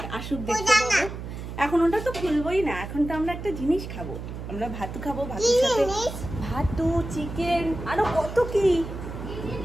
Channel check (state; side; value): noise; right; hum, 8 dB below the sound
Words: আসুক দেখতে পাবো। এখন ওটা তো খুলবোই না, এখন তো আমরা একটা জিনিস খাবো, আমরা ভাতু খাবো, ভাতুর সাথে ভাতু, চিকেন, আরো কত কি।